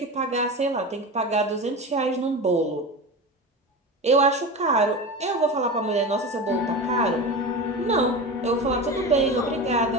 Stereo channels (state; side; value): normal; both; correlation 0.27